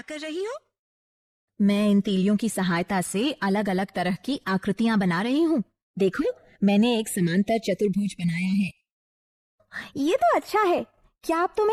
कर रही हो? मैं इन तीलियों की सहायता से अलग अलग तरह की आकृतियां बना रही हूँ। देखो, मैंने एक समांतर चतुर्भुज बनाया है। ये तो अच्छा है। क्या अब तुम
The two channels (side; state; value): both; identical; correlation 1.00